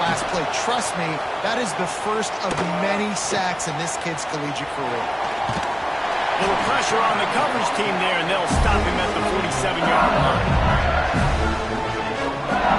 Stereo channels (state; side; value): identical; both; correlation 1.00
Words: play. Trust me, that is the first of many sacks in this kid's collegiate career. Little pressure on the coverage team there, and they'll stop him at the 47-yard line.